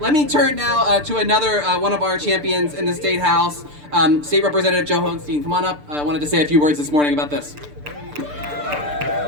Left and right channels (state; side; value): late; left; 6.8 ms